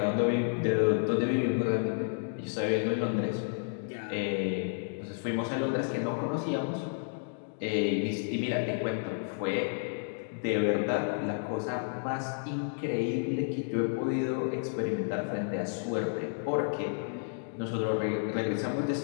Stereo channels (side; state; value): right; silent; digital silence